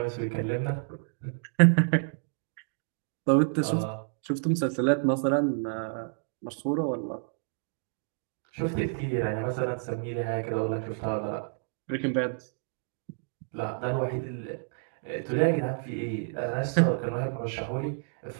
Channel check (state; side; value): silent; left; 58 dB below the other